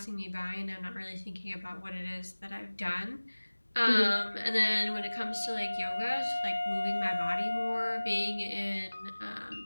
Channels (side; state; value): both; inverted; correlation -1.00